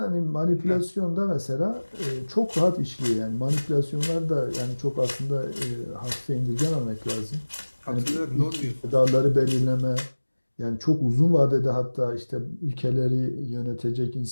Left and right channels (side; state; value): both; inverted; correlation -1.00